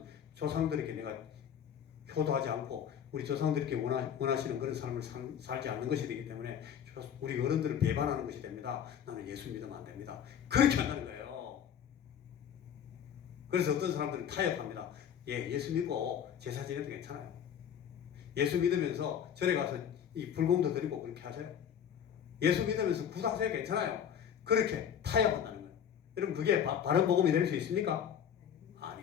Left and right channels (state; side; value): quieter; right; 8.7 dB